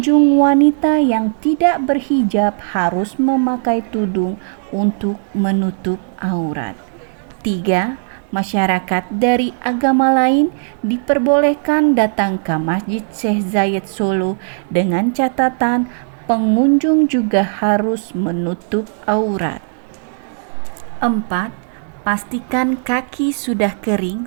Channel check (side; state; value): left; silent; digital silence